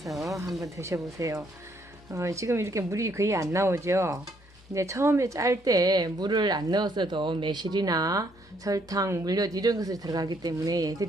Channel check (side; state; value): both; normal; correlation 0.69